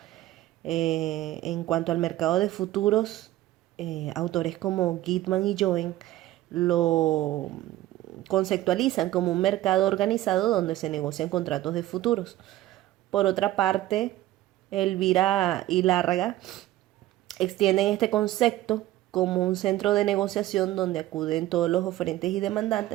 En cuanto al mercado de futuros, autores como Gitman y Joen lo conceptualizan como un mercado organizado donde se negocian contratos de futuros. Por otra parte, Elvira y Lárraga extienden este concepto como un centro de negociación donde acuden todos los oferentes y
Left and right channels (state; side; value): quieter; left; 15.1 dB